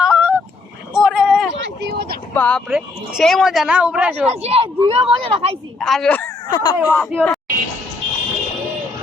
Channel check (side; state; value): right; quieter; 3.6 dB